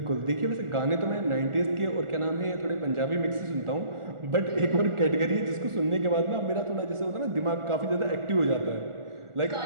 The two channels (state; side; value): late; left; 1.4 ms